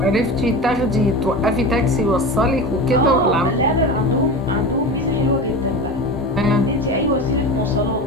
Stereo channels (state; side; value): normal; both; correlation 0.27